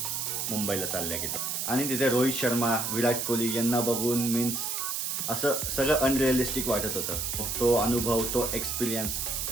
मुंबईला चालल्या गेलो. आणि तिथे रोहित शर्मा, विराट कोहली यांना बघून मीन्स असं सगळं अनरिअलिस्टिक वाटत होतं. तो अनुभव, तो एक्सपिरियन्स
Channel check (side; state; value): right; noise; hiss, 2 dB below the sound